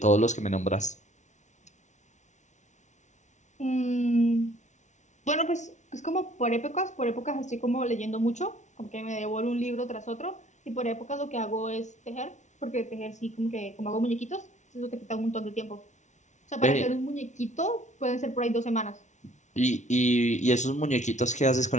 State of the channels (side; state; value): right; late; 0.35 ms